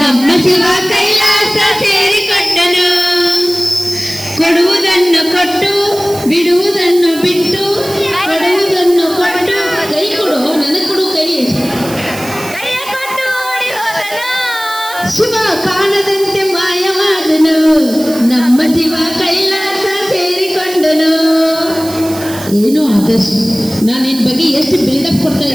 ಶಿವ ಕೈಲಾಸ ಸೇರಿಕೊಂಡನು ಕೊಡುವುದನ್ನು ಕೊಟ್ಟು ಬಿಡುವುದನ್ನು ಬಿಟ್ಟು ಏನೋ ಆದರ್ಶ್, ನಾನು ನಿನ್ನ ಬಗ್ಗೆ ಎಷ್ಟು ಬಿಲ್ಡಪ್ ಕೊಡ್ತಾ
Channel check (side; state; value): right; noise; hiss, 13 dB below the sound